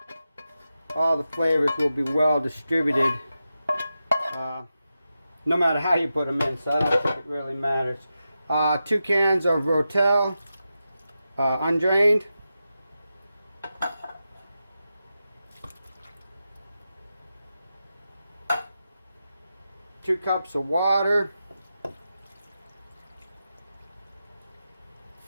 all the flavors will be well distributed, no matter how you put them in, so I don't think it really matters. 2 cans of Rotel, undrained. 2 cups of water.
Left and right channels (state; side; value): inverted; both; correlation -0.90